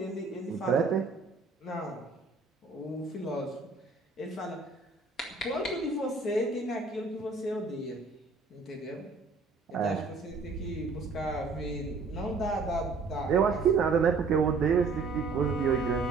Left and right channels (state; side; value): quieter; left; 4.1 dB